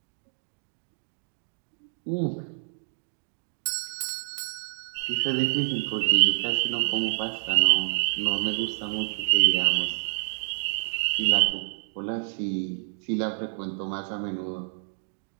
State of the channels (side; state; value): left; silent; digital silence